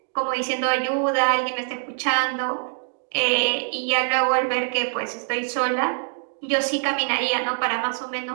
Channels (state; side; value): silent; left; 63 dB below the other